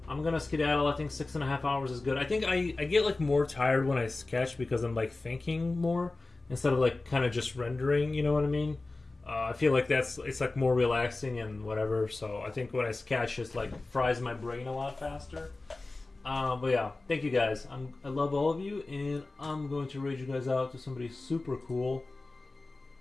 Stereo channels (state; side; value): quieter; right; 3.3 dB